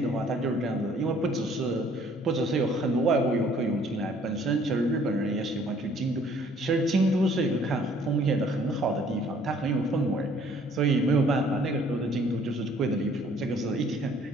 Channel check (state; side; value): normal; both; correlation 0.59